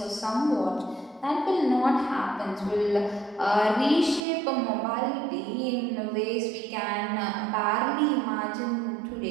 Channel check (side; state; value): left; drops out; at 4.2 s